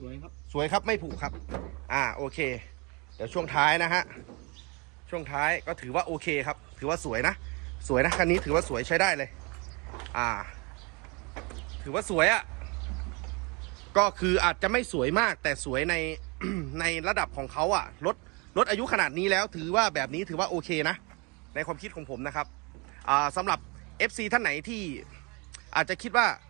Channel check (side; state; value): left; quieter; 29.7 dB